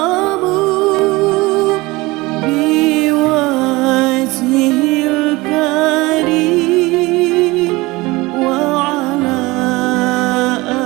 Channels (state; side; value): quieter; left; 21.8 dB